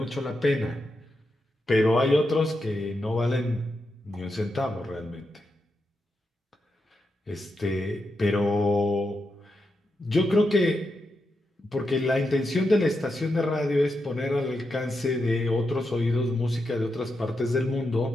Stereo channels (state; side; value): normal; both; correlation 0.86